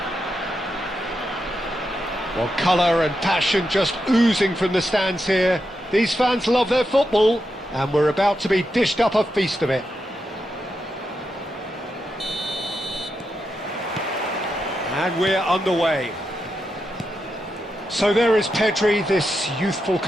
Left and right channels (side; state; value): both; normal; correlation 0.86